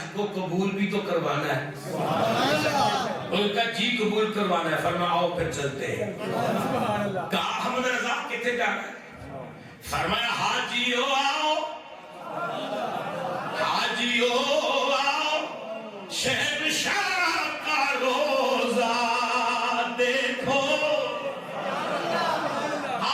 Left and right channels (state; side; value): identical; both; correlation 1.00